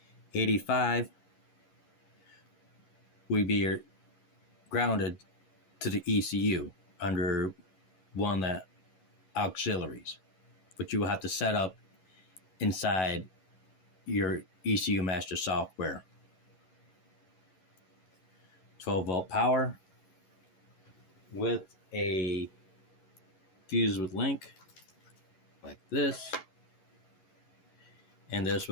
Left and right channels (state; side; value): late; right; 11 ms